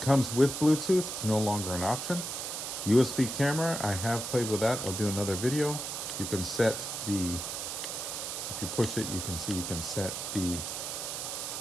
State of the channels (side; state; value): right; noise; hiss, 5 dB below the sound